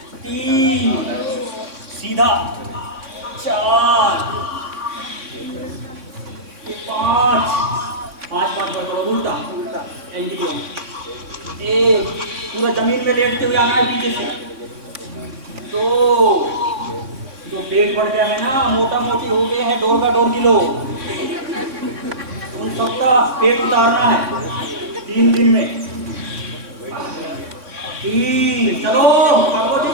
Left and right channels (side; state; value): left; late; 3.6 ms